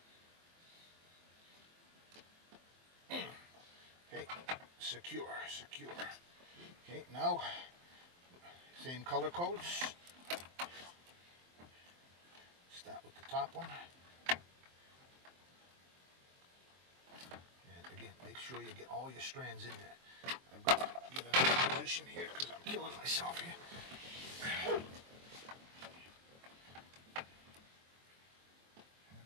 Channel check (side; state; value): left; late; 23 ms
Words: Okay, secure. Okay, now same color codes. Start with the top one. And again, make sure you get all your strands in there. I've got to get another position here because I'm killing myself here.